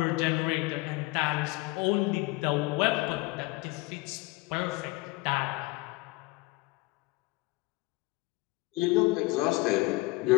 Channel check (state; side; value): quieter; right; 22.4 dB